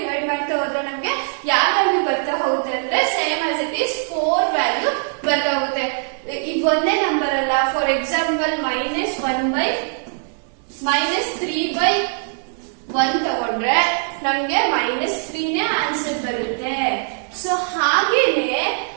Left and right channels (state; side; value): silent; left; 59 dB below the other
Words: ಮಾಡ್ತಾ ಹೋದ್ರೆ ನಮ್ಗೆ ಯಾವ ವ್ಯಾಲ್ಯೂ ಬರ್ತಾ ಹೋಗುತ್ತೆ ಅಂದ್ರೆ same as it is 4 value ಬರ್ತಾ ಹೋಗುತ್ತೆ. ಇದು ಒಂದೇ ನಂಬರ್ ಅಲ್ಲ. ಫಾರ್ ಎಕ್ಸಾಂಪಲ್ -3/1 ತಗೊಂಡ್ರೆ ನಮ್ಗೆ -3 ನೇ ಆನ್ಸರ್ ಬರುತ್ತೆ. ಸೊ ಹಾಗೇನೆ